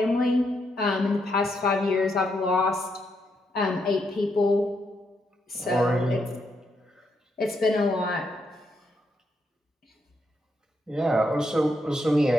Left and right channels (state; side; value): normal; both; correlation 0.79